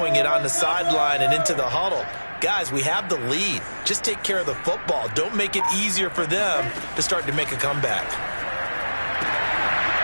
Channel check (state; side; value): inverted; both; correlation -1.00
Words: it on the sideline and into the huddle. Guys, we have the lead. Just take care of the football. Don't make it easier for them to start to make a comeback.